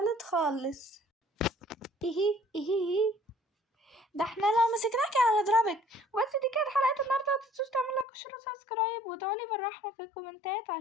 خالص. ايه ده احنا لو مسكناكي هنضربك. بس دي كانت حلقة النهاردة، متنسوش تعملوا لايك وشير وسبسكرايب وادعولي بالرحمة في الكومنتات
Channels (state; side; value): drops out; right; at 8.1 s